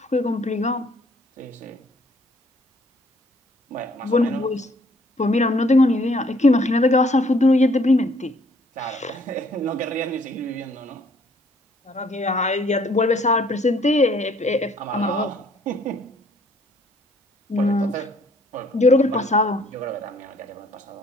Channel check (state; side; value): normal; both; correlation 0.62